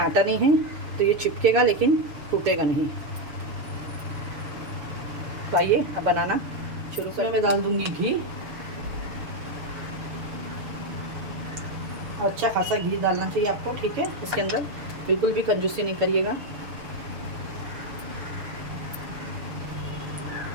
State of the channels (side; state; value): left; late; 6.8 ms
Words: नहीं है तो ये चिपकेगा लेकिन टूटेगा नहीं। तो आइए अब बनाना शुरू करें। मैं डाल दूंगी घी, अच्छा खासा घी डालना चाहिए आपको, ठीक है। इसके अंदर बिल्कुल भी कंजूसी नहीं करिएगा।